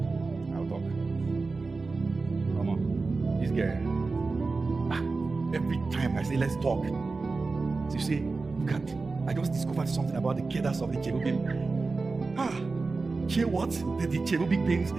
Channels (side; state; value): left; quieter; 3.9 dB